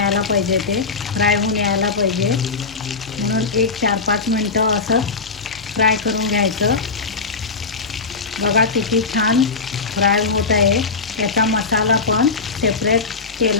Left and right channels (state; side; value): quieter; right; 4.5 dB